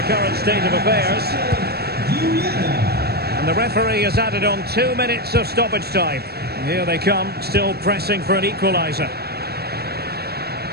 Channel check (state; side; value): late; left; 0.46 ms